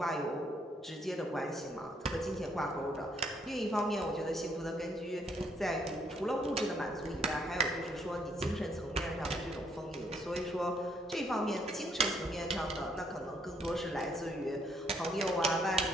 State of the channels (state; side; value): normal; both; correlation 0.69